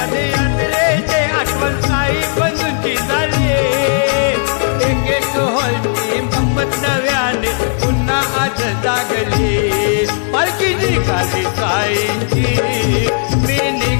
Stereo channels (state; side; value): silent; right; digital silence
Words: आठवण साई बंधूंची झाली एक एक हॉलची गंमत नव्याने पुन्हा आज जागली पालखी निघाली साईंची मी